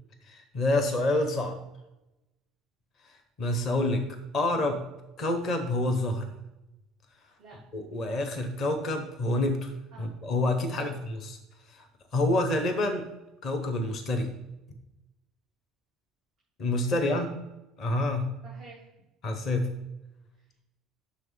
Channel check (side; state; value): both; normal; correlation 0.57